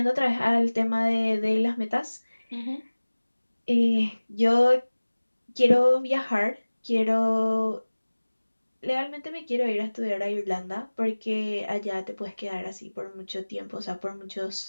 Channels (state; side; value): inverted; both; correlation -1.00